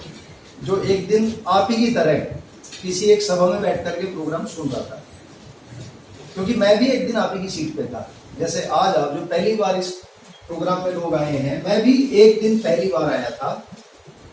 जो एक दिन आप ही की तरह किसी एक सभा में बैठ करके प्रोग्राम सुन रहा था। क्योंकि मैं भी एक दिन आप ही की सीट पे था। जैसे आज आप जो पहली बार इस प्रोग्राम में लोग आए हैं, मैं भी एक दिन पहली बार आया था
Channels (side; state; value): both; identical; correlation 1.00